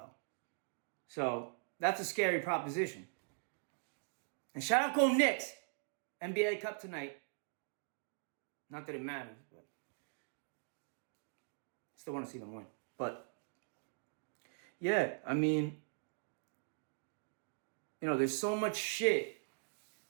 So that's a scary proposition. And shout out Go Knicks. NBA Cup tonight. Not that it matters, but still want to see them win. But yeah, I mean, there's so much shit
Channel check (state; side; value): silent; left; digital silence